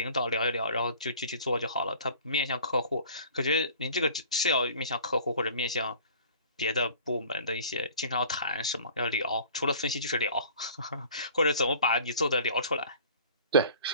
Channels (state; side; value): inverted; both; correlation -0.47